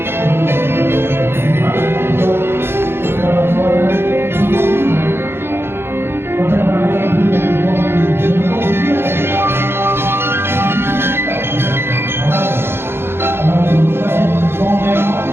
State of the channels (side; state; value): left; late; 0.11 ms